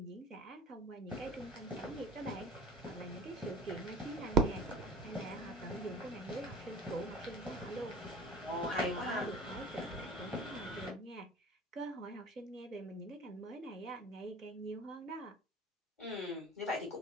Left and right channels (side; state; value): both; normal; correlation 0.39